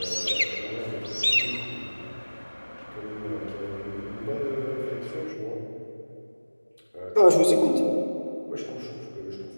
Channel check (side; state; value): both; inverted; correlation -1.00